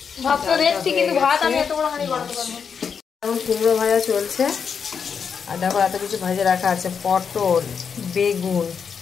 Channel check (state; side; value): quieter; right; 6.5 dB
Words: এখন কুমড়ো ভাজা চলছে, আর দেখো এত কিছু ভাজা রাখা আছে, পটল, বেগুন,